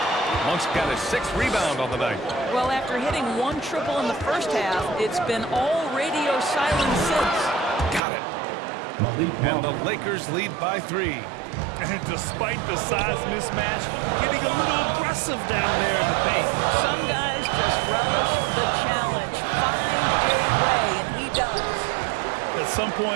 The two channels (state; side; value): drops out; left; at 8.0 s